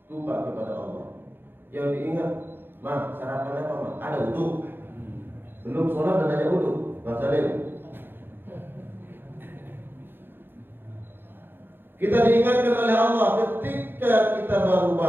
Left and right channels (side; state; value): left; late; 0.10 ms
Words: lupa kepada Allah. Yang diingat, mah sarapan apa mah? Ada wudu. Belum sholat dan hanya wudu. Bang Salim. Kita diingatkan oleh Allah ketika kita baru